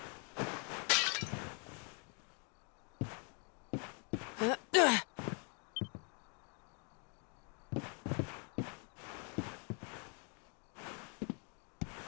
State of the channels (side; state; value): right; quieter; 38.5 dB